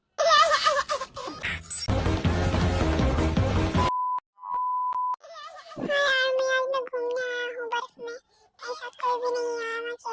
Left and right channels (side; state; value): both; identical; correlation 1.00